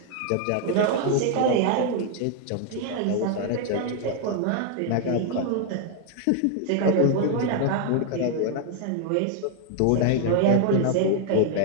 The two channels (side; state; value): both; different; correlation 0.00